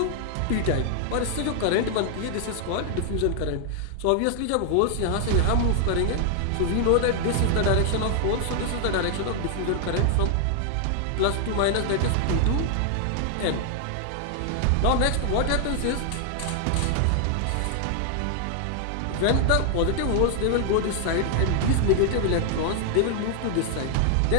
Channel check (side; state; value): both; different; correlation 0.00